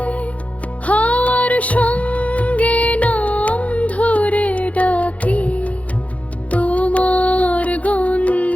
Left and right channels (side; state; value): right; late; 0.066 ms